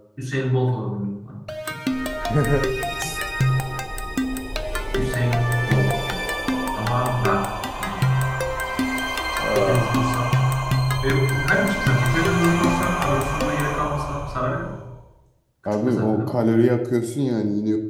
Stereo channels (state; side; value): identical; both; correlation 1.00